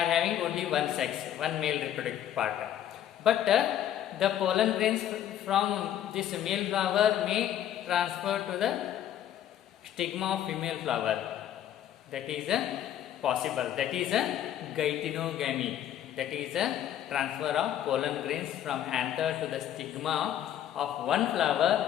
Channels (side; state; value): right; quieter; 11.0 dB